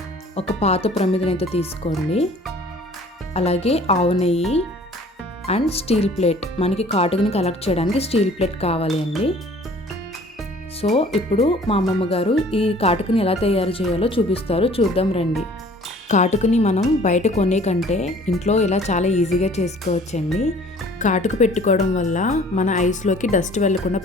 ఒక పాత ప్రమిదనైతే తీసుకోండి. అలాగే ఆవు నెయ్యి అండ్ స్టీల్ ప్లేట్, మనకి కాటుకని కలెక్ట్ చేయడానికి స్టీల్ ప్లేట్ కావాలి అండి. సో ఇప్పుడు మా అమ్మమ్మ గారు ఈ కాటుకని ఎలా తయారు చేయాలో చూపిస్తారు, చూద్దాం రండి. కాటుకని మనం బయట కొనే కంటే ఇంట్లో ఇలా చాలా ఈజీగా చేసుకోవచ్చండి. కాటుక పెట్టుకోవడం వల్ల మన ఐస్లోకి డస్ట్ వెళ్లకుండా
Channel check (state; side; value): normal; both; correlation 0.52